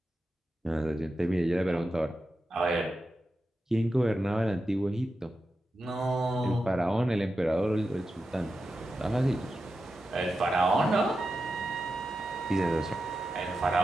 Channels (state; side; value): normal; both; correlation 0.90